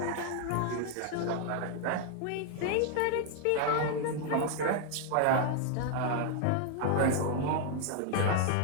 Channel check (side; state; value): both; different; correlation 0.00